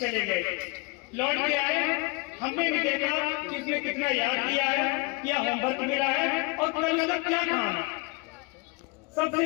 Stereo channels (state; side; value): quieter; right; 28.0 dB